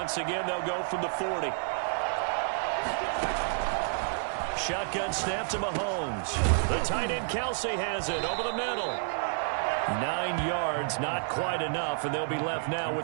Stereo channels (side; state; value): left; silent; 58 dB below the other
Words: again, they'll go from the 40. Shotgun snap to Mahomes. The tight end Kelsey has it over the middle. 9 yards, not quite enough, and they'll be left now